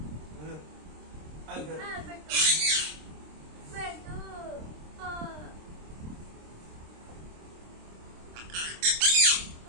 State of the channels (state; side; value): late; left; 26 ms